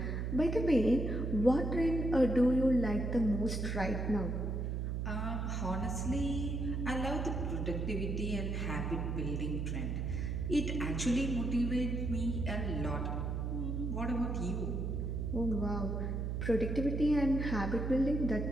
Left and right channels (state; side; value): noise; right; hum, 1 dB below the sound